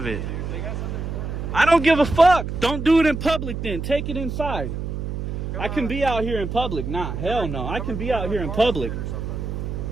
it. I don't give a fuck. Don't do it in public then. Take it inside. I can be out here in public. Nah, hell no. I can be out here in public.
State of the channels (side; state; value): right; noise; hum, 5 dB below the sound